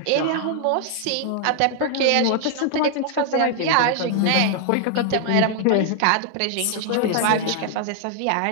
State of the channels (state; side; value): different; both; correlation 0.00